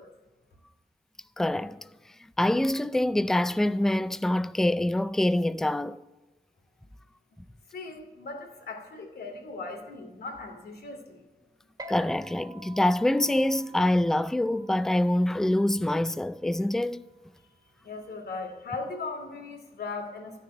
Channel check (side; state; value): both; normal; correlation 0.94